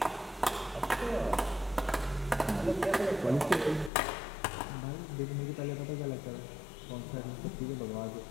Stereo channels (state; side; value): drops out; right; at 3.9 s